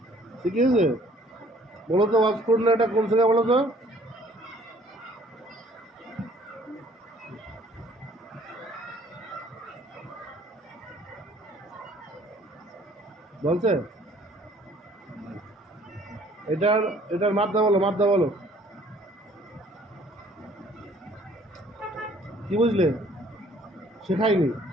শিখিয়েছে। বলো তো ওয়াজ করলে এটা কোন থেকে বলো তো? বলছে এটার এটার মাদ্দা বলো, মাদ্দা বলো। কি বুঝলে? শেখায়নি,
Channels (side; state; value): both; normal; correlation 0.57